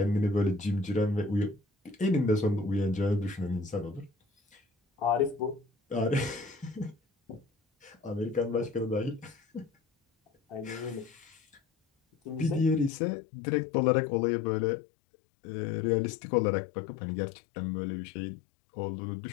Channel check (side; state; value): right; drops out; at 12.9 s